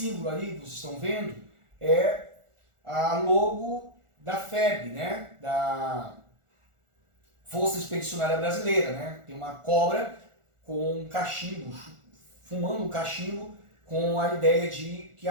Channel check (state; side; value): late; left; 1.4 ms